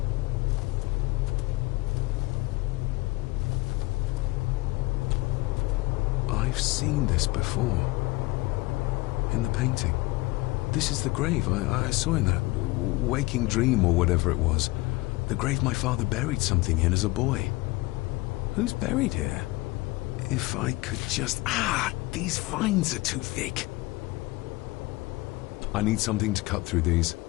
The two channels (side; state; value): right; quieter; 21.8 dB